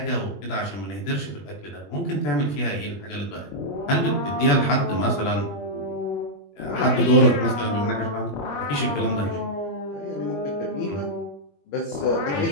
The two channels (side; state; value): right; late; 21 ms